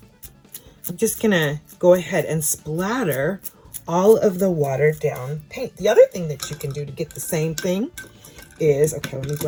I'm just going to go ahead and splatter all of the watered down paint. The other thing that you can do to get the same thing is, okay, let me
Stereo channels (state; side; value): identical; both; correlation 1.00